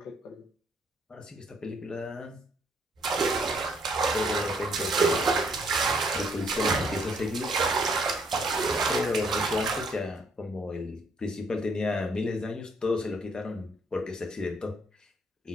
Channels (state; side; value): normal; both; correlation 0.68